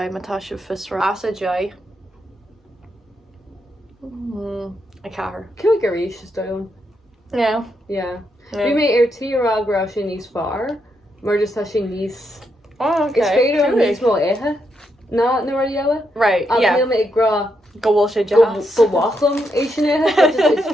matá se fisra as a jai. A cahar. Cú go ríis is dom. Yeah. Yeah. Bhí mé ar tírágrá sin níos fearr, mar just tá sin níos... Oh, okay. Is féidir an Cúig. níos mó éthe? Na ra eile? Right, Ach yeah. níl mé ag grá Go bhfuil sé go jazz. bhachlam é sin éthe, is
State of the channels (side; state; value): both; normal; correlation 0.80